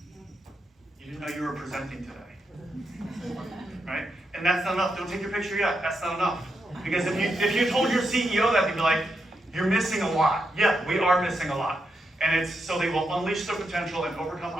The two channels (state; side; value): normal; both; correlation 0.84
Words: You didn't know you were presenting today. Right? And that's not enough. Don't take your picture yet. That's not enough. Because if you told your CEO that, they'd be like, you're missing a lot. Yeah, we are missing a lot. And it's so they will unleash their potential and overcome